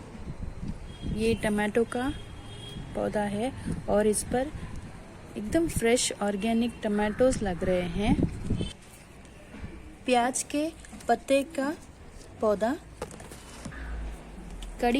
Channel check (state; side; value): identical; both; correlation 1.00